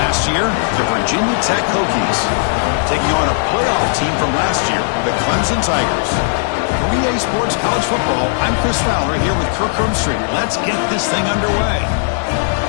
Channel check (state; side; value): silent; right; 56 dB below the other